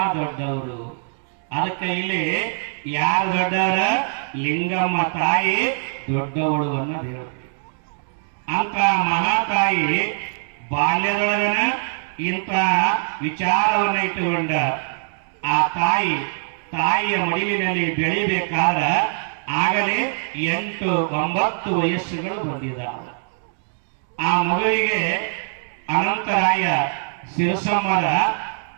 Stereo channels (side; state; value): left; silent; 64 dB below the other